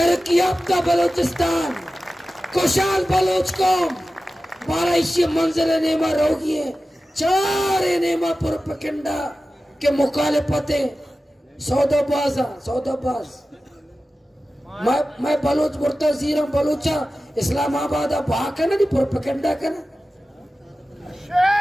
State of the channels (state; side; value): normal; both; correlation 0.95